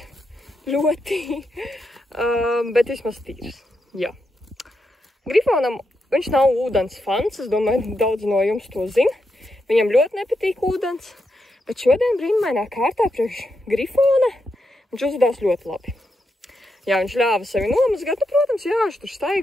ļoti, bet vismaz tīrs, jā. Grifonam, viņš nav ūdens fans, es domāju, daudz no jums to zina. Viņam ļoti nepatīk ūdens, bet šodien brīnumainā kārtā priekš Grifona viņš uzvedās ļoti labi. Jā, viņš ļāva sevi nomazgāt, nu, protams, jā, viņš tur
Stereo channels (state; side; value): normal; both; correlation 0.84